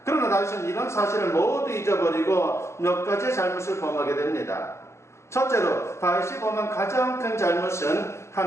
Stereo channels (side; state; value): right; late; 0.13 ms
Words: 그러나 다윗은 이런 사실을 모두 잊어버리고 몇 가지의 잘못을 범하게 됩니다. 첫째로 다윗이 범한 가장 큰 잘못은